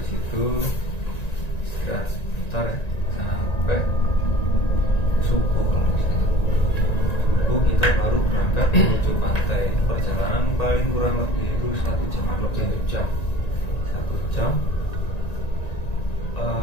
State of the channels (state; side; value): late; right; 1.9 ms